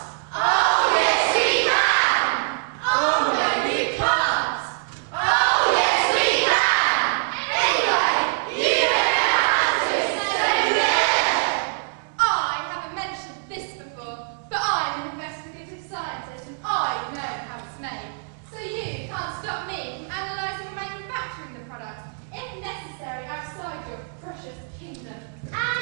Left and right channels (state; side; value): silent; left; digital silence